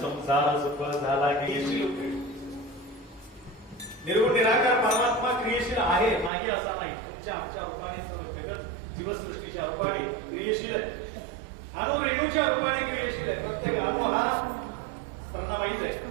सफळ झाला की निर्गुण निराकार परमात्मा क्रियशील आहे नाही असा नाही. तुमच्या आमच्या रूपाने सर्व जगत जीवसृष्टीच्या रूपाने क्रियशील आहे. अणु रेणूच्या रूपाने क्रियशील आहे. प्रत्येक अणु हा स्पर्धा माहित आहे.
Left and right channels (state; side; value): drops out; left; at 6.3 s